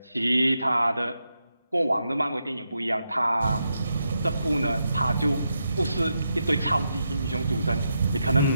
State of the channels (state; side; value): inverted; both; correlation -0.84